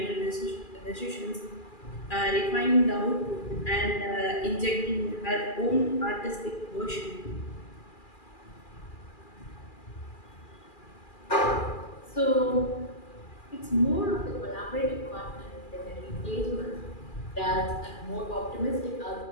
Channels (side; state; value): right; late; 2.4 ms